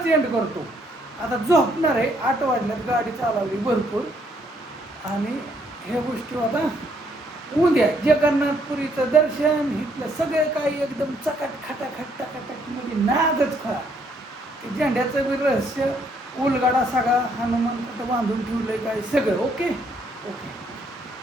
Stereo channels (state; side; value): normal; both; correlation 0.69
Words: एंड करतो. आता झोपणार आहे. 8 वाजल्यात गाडी चालवली भरपूर आणि ह्या गोष्टी आता उद्या जगन्नाथपुरीचं दर्शन इथलं सगळं काही एकदम चकाट खटाखट टाकाटक म्हणजे नादच खरा. ते झेंड्याचं बी रहस्य उलगाडा सगळा हनुमान कुठं बांधून ठेवलंय काय सगळं ओके.